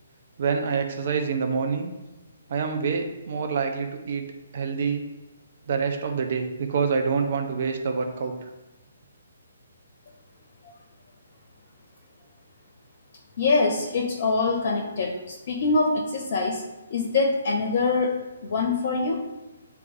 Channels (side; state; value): both; inverted; correlation -0.59